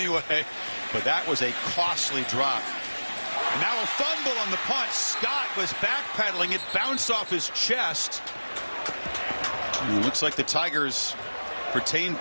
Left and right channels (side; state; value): both; inverted; correlation -1.00